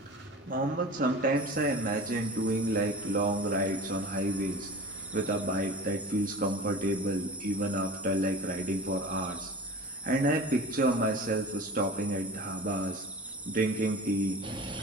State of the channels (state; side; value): normal; both; correlation 0.36